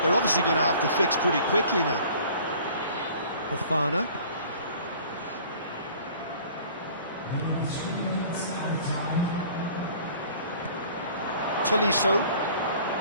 obviously going to have to fix pretty quickly now. Fofana. Tolisso.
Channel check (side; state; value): both; inverted; correlation -0.49